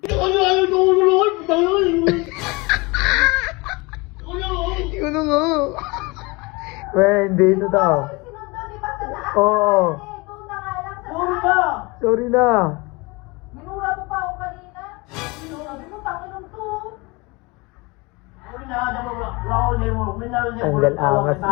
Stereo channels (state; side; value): quieter; right; 25.6 dB